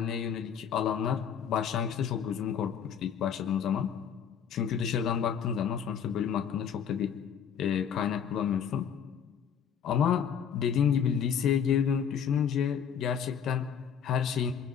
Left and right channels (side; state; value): right; quieter; 7.8 dB